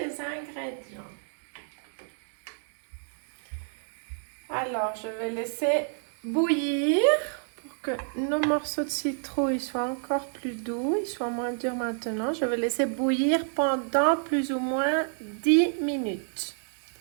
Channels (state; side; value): silent; left; 59 dB below the other